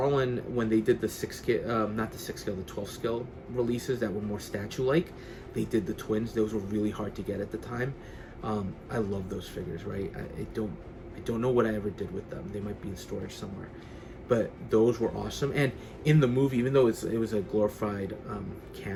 when they did the 12 scale releases that were more statue-like, they did the twins. Those were really hard to get at the time. I love those figures, right? I don't know what I ever did with them. They might be in storage somewhere. But those were awesome. And in the movie, even though it was a glorified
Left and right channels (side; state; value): both; identical; correlation 1.00